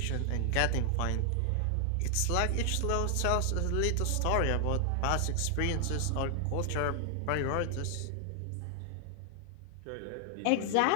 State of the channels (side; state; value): both; different; correlation 0.00